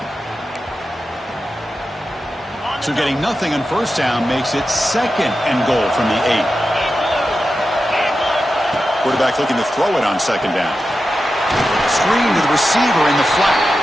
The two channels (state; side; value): normal; both; correlation 0.91